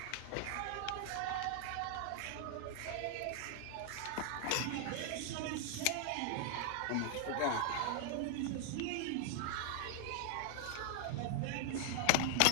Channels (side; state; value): both; different; correlation 0.00